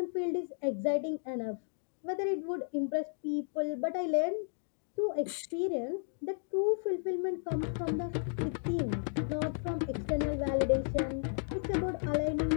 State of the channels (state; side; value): silent; right; digital silence